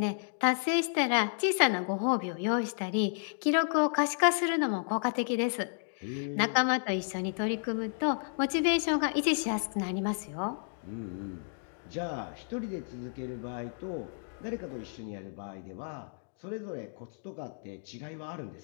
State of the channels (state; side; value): silent; right; digital silence